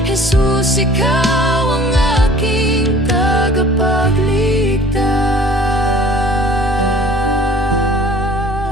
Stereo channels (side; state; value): both; normal; correlation 0.49